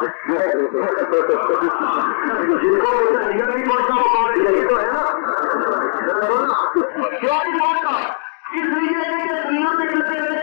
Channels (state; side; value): silent; right; digital silence